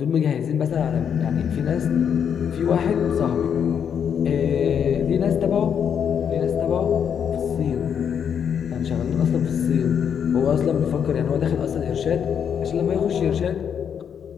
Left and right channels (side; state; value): right; quieter; 7.9 dB